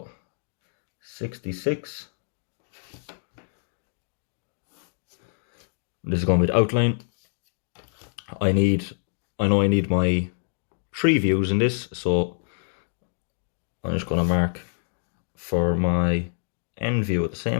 66. This is going to be the outline. I know I need my 3 views in this, so I'm just going to mark for my end view at the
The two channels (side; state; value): right; silent; digital silence